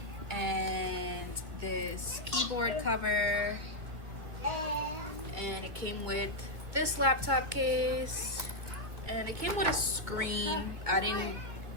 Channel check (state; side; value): late; left; 2.1 ms